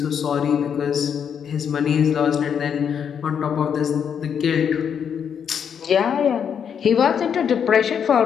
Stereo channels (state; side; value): quieter; right; 7.7 dB